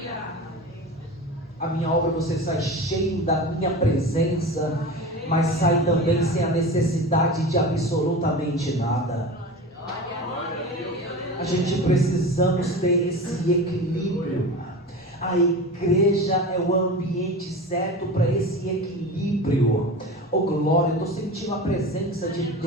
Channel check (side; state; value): both; normal; correlation 0.31